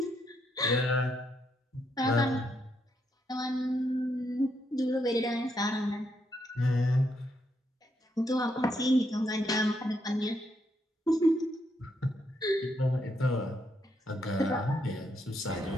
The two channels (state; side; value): normal; both; correlation 0.77